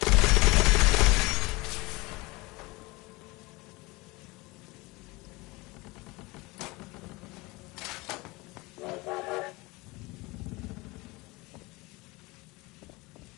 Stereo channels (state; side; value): quieter; right; 23.5 dB